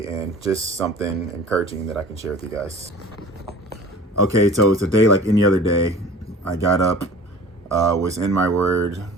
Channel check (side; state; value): both; normal; correlation 0.43